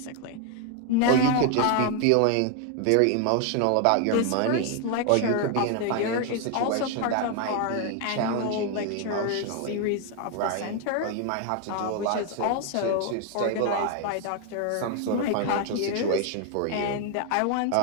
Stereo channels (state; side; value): different; both; correlation 0.01